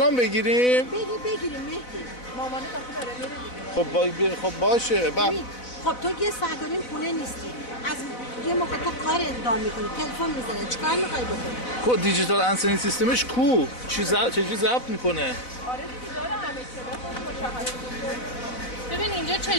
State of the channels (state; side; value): late; right; 4.0 ms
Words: بگیریم؟ بگیریم مهدی. مامانت آخه داره میره دیگه. خب باشه. خب تو یه ساعت و نیم خونه نیستی. از یه موقع تو کار اقدام میکنی، تلفن میزنه، چیکار میخوای بکنی؟ کو دیجیتال انسنی سیستمش کو؟ چجوری ضبط میکنه؟ آره دیگه داره همه چی. ببین اینجا